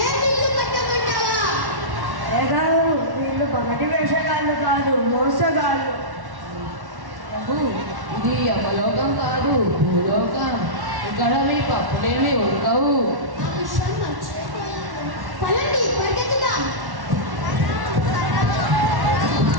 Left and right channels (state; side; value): late; left; 1.1 ms